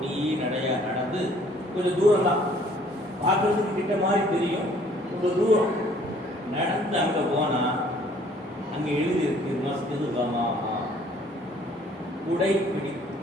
நடையா நடந்து கொஞ்சம் தூரம் தான் பார்க்கறதுக்கு கிட்ட மாதிரி தெரியும். ரொம்ப தூரம் நடந்து அங்க போனா அங்க எழுதி இருக்கு மஸ்ஜிது கமாமா, குடை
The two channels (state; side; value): normal; both; correlation 0.58